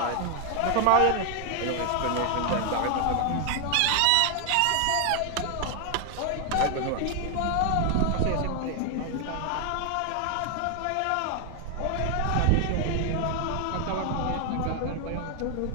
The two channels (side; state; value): both; different; correlation 0.00